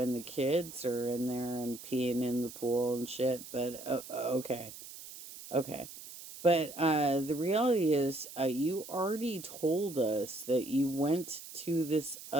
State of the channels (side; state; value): right; noise; hiss, 14 dB below the sound